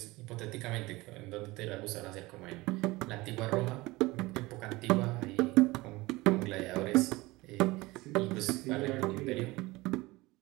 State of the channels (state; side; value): quieter; left; 21.1 dB